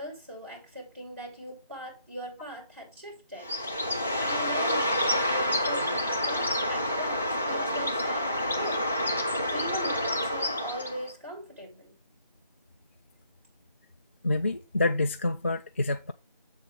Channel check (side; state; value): both; inverted; correlation -0.69